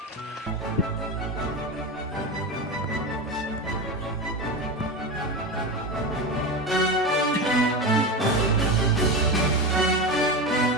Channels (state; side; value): normal; both; correlation 0.21